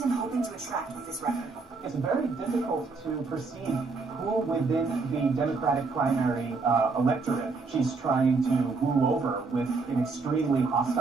hoping to attract with this record? It's very difficult to perceive who within the Democratic primary electorate she's trying to woo over with an extremely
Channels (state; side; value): quieter; left; 4.2 dB